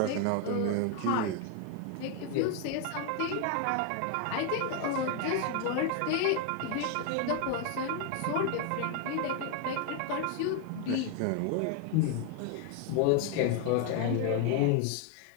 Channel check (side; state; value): both; different; correlation 0.01